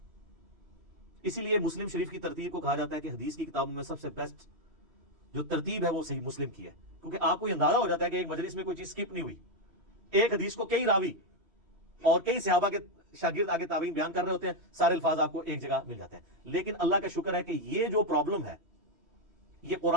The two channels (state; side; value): late; left; 3.1 ms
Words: اسی لیے مسلم شریف کی ترتیب کو کہا جاتا ہے کہ حدیث کی کتابوں میں سب سے بیسٹ جو ترتیب ہے وہ صحیح مسلم کی ہے, کیونکہ آپ کو یہ اندازہ ہو جاتا ہے کہ ایک مجلس میں کوئی چیز سکپ نہیں ہوئی. ایک حدیث کو کئی راوی اور کئی صحابہ کے شاگرد آگے تابعین بیان کر رہے ہوتے ہیں, سارے الفاظ آپ کو ایک جگہ مل جاتے ہیں. لیکن اللہ کا شکر ہے کہ یہ جو پرابلم ہے یہ